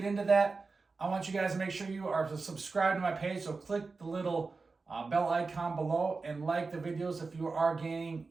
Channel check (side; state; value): left; quieter; 4.1 dB